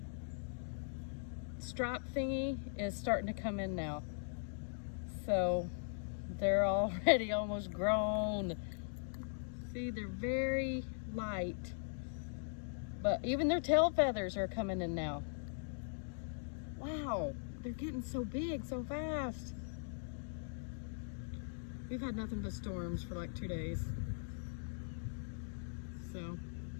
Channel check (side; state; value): right; silent; digital silence